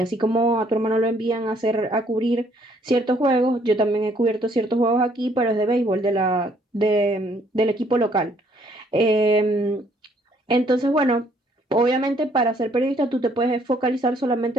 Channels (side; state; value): both; normal; correlation 0.65